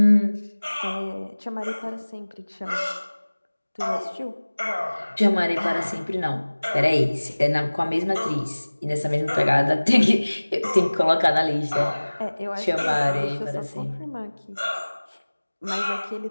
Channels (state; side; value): inverted; both; correlation -1.00